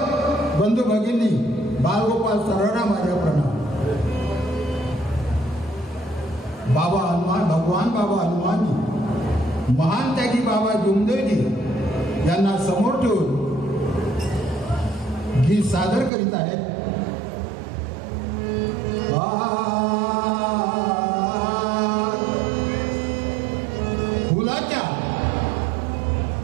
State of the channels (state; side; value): drops out; left; at 16.1 s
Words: बंधू भगिनी बालगोपाल सर्वांना माझा प्रणाम. बाबा हनुमान भगवान बाबा हनुमानजी महान त्यागी बाबा जुमदेवजी यांना समोर ठेवून गीत सादर करीत आहेत.